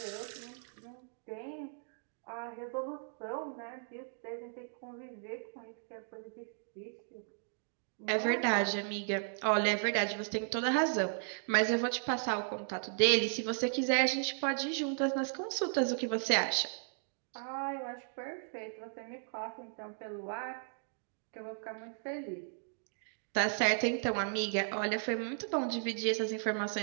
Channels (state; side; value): silent; left; digital silence